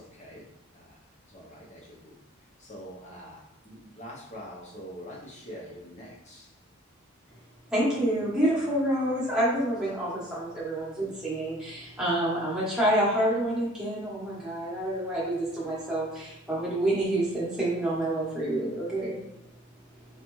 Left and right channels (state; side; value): normal; both; correlation 0.54